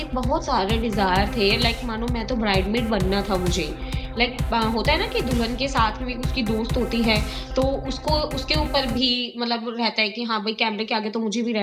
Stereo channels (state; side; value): identical; both; correlation 1.00